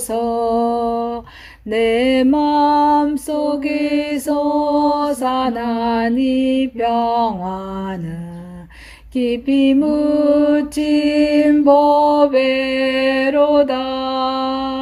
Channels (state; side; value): identical; both; correlation 1.00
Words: 내 맘속에 솟아난 이 평화는 깊이 묻힌 보배로다.